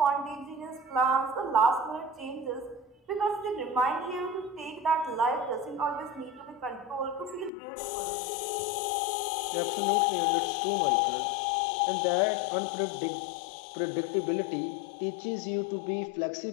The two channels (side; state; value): right; drops out; at 7.5 s